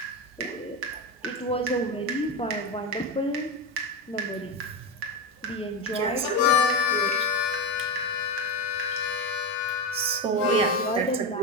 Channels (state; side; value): normal; both; correlation 0.15